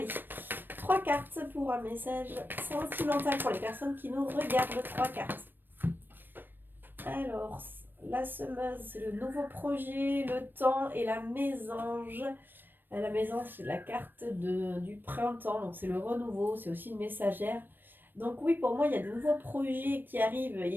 3 cartes pour un message sentimental pour les personnes qui nous regardent. 3 cartes. Alors, la semeuse, c'est le nouveau projet, le temps et la mésange. La mésange, c'est la carte du printemps, donc c'est le renouveau, c'est aussi une messagère. Donc oui, pour moi, il y a de nouveaux projets qui arrivent.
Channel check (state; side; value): late; left; 0.094 ms